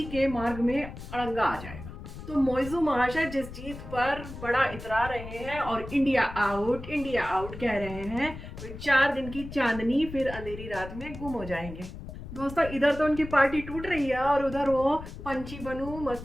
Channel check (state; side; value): noise; left; rumble, 12 dB below the sound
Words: के मार्ग में अड़ंगा आ जाएगा। तो मोइज़ू महाशय जिस जीत पर बड़ा इतरा रहे हैं और इंडिया आउट कह रहे हैं, वे 4 दिन की चांदनी फिर अंधेरी रात में गुम हो जाएंगे। दोस्तों, इधर तो उनकी पार्टी टूट रही है और उधर वो पंछी बनूं